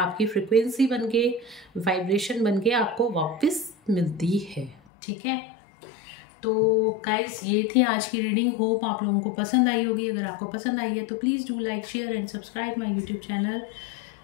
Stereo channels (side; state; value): right; drops out; at 4.8 s